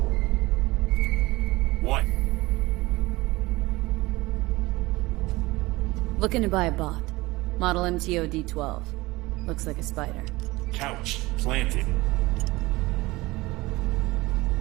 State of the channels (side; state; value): left; quieter; 20.8 dB